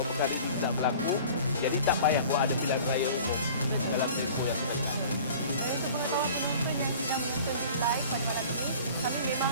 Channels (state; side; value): inverted; both; correlation -0.45